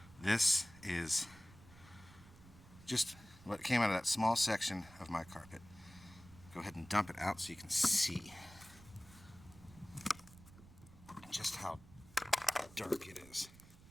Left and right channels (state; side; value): noise; right; rumble, 21 dB below the sound